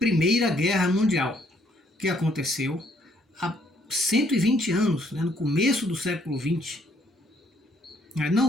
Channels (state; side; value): normal; both; correlation 0.67